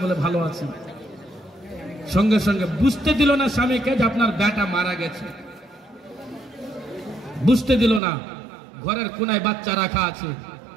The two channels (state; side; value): drops out; left; at 8.0 s